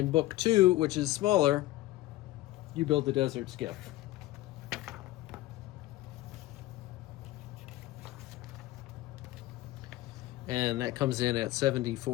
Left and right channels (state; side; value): quieter; right; 16.7 dB